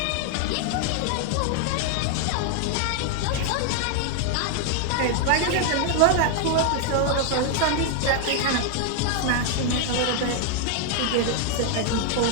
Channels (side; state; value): both; different; correlation 0.00